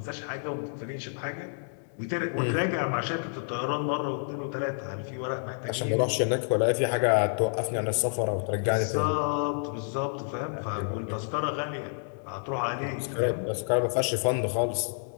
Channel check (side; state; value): right; silent; digital silence